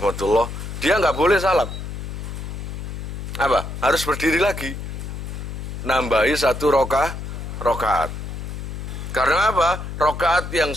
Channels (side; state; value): left; noise; hum, 7 dB below the sound